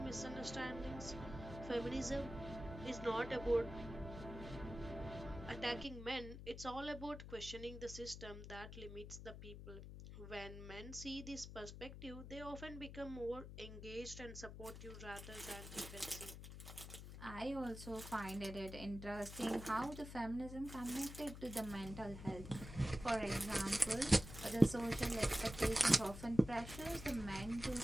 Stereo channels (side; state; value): left; noise; hum, 11 dB below the sound